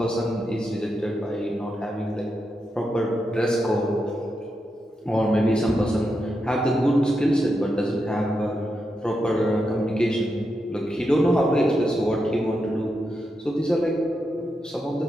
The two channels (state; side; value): normal; both; correlation 0.86